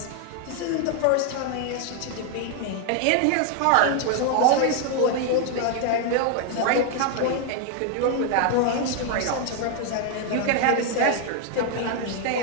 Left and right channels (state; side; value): different; both; correlation 0.00